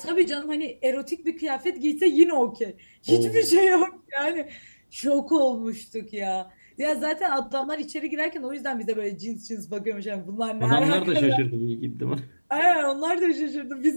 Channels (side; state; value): both; inverted; correlation -1.00